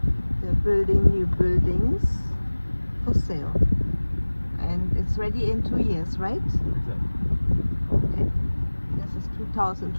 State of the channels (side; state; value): both; inverted; correlation -1.00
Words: they're building new buildings for sale, and it's ready in 2 years, right? Exactly. Okay. This is